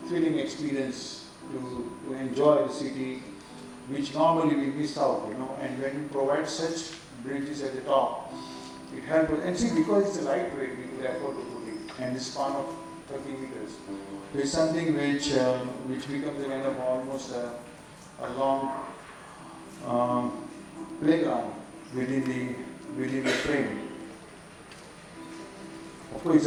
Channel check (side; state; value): both; identical; correlation 1.00